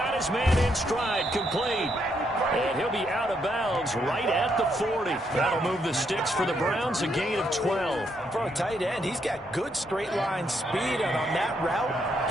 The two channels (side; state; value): both; normal; correlation 0.76